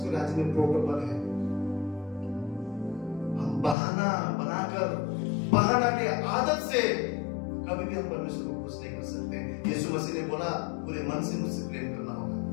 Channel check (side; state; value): right; drops out; at 3.8 s